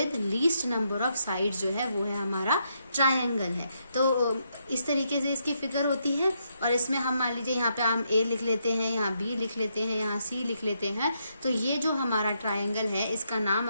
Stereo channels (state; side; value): inverted; both; correlation -0.78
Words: least number of sides जो है वो है हमारा ट्रायंगल है। तो इस तरीके से इसकी फिगर होती है। और इसमें हम मान लीजिए यहाँ पे हम ए लिख लेते हैं, यहाँ बी लिख लेते हैं, यहाँ सी लिख लेते हैं। तो ये जो हमारा ट्रायंगल है इसका नाम